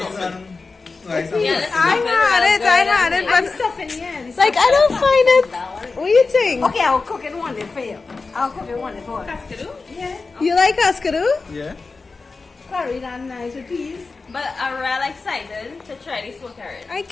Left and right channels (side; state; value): right; quieter; 4.1 dB